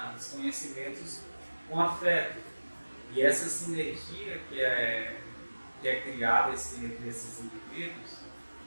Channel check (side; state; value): both; inverted; correlation -1.00